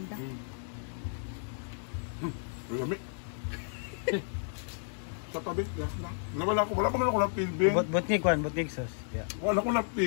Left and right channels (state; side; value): silent; right; 56 dB below the other